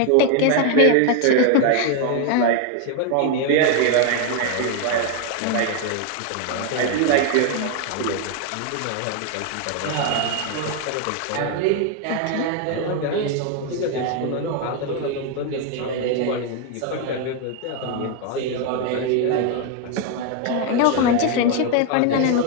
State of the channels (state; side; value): different; both; correlation 0.01